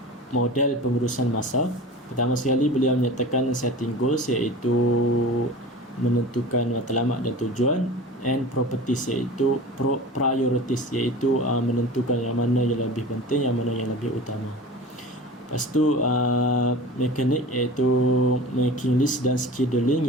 model pengurusan masa. Pertama sekali beliau menyatakan setting goals, iaitu menentukan matlamat dan tujuan, and properties, iaitu priorities, iaitu menentukan yang mana yang lebih penting, yang mana yang lebih utama. Lepas tu mekanik, iaitu making list dan scheduling,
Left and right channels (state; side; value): normal; both; correlation 0.36